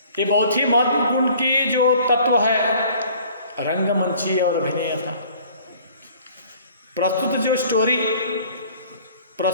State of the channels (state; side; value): inverted; both; correlation -0.53